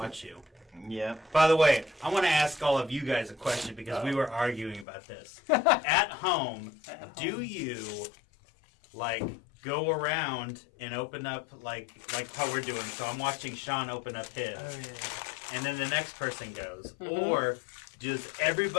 you. Yep. By the way, I want to ask all of you guys a question because we were arguing about this. At home, do you go around and open up like how we're doing? So I'm watching Sean open up his, Oh, yeah. and then the next person goes, Mm-hmm. or does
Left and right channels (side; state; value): right; drops out; at 4.9 s